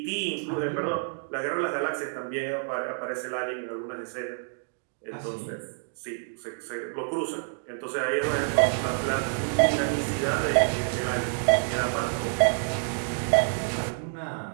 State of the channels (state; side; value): silent; left; digital silence